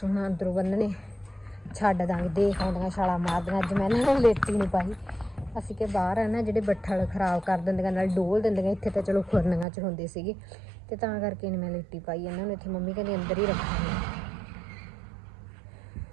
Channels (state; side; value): drops out; left; at 9.7 s